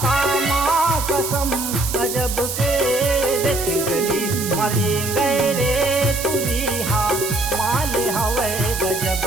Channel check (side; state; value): right; noise; hiss, 6 dB below the sound